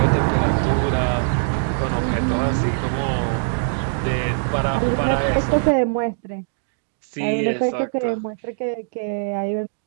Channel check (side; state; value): left; silent; digital silence